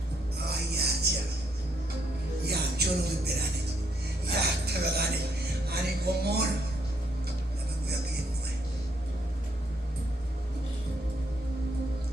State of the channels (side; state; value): both; normal; correlation 0.73